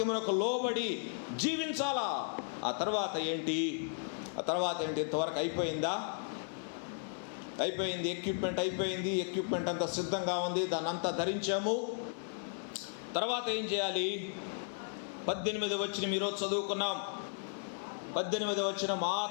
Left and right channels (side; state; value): right; silent; digital silence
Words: లోబడి జీవించాలా. ఆ తర్వాత ఏంటి? ఇంతవరకు అయిపోయిందా? అయిపోయింది. ఎక్విప్మెంట్ అంతా సిద్ధంగా ఉంది, దాన్ని అంతా ధరించాము. తర్వాత ఏం చేయాలి? 18వ వచనం ఈరోజు చదువుకున్నాం. 18వ వచనం,